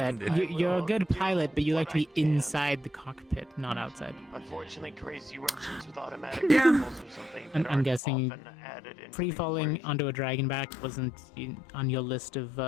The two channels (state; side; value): drops out; right; at 8.0 s